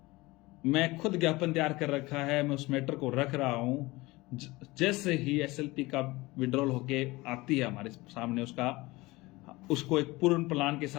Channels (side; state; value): right; quieter; 21.3 dB